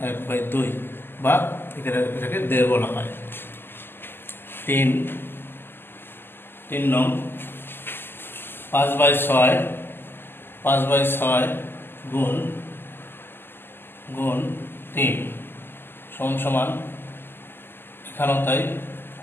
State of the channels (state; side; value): late; right; 0.10 ms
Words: 1/2, বা এটাকে 1.5 বলা হয়। 3 নং 5/6 গুণ 3 সমান, এখানেও তাই,